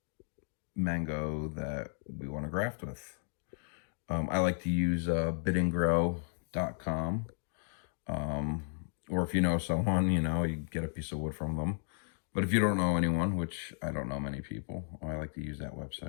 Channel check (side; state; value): right; silent; digital silence